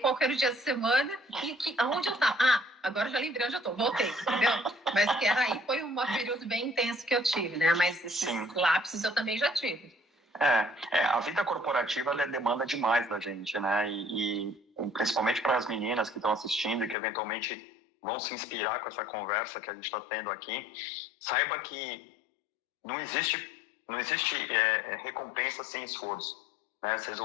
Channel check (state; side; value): drops out; right; at 16.9 s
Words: era o dia da semana e aonde eu estava. Ah, agora já lembrei onde eu tô, voltei, entendeu? Mas que era aí, foi um período bem intenso que eu tive, né? Mas esses lapsos eu também já tive. A vida corporativa ela demanda demais da gente, né? E principalmente para as meninas que estão assistindo e que eventualmente vão se inspirar com essa conversa que a gente está tendo aqui, saiba que não existe recompensa sem esforço, né? Vocês